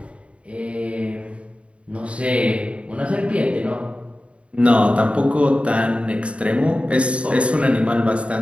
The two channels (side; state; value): left; late; 0.061 ms